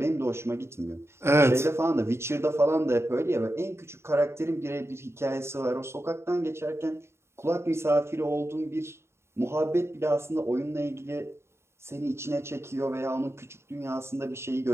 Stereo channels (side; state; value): left; late; 0.13 ms